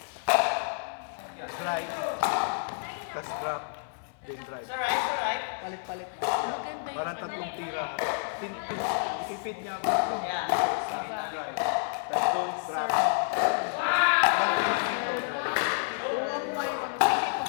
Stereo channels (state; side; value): silent; right; digital silence